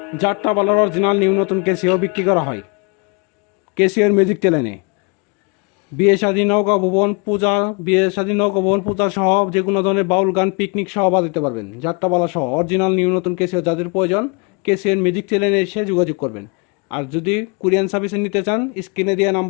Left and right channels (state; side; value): quieter; right; 32.7 dB